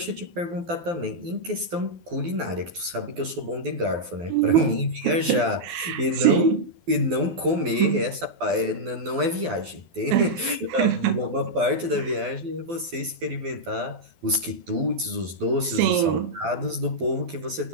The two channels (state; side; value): late; left; 12 ms